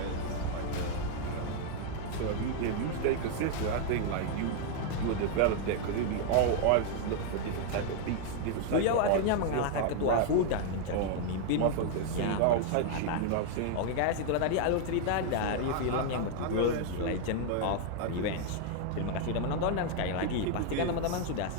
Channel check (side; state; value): both; different; correlation 0.00